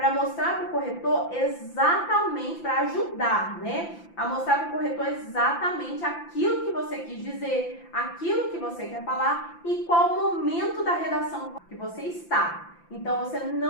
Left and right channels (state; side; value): late; right; 5.9 ms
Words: mostrar para o corretor exatamente, para ajudar, né? A mostrar para o corretor exatamente aquilo que você quis dizer, aquilo que você quer falar e qual momento da redação que você está. Então, você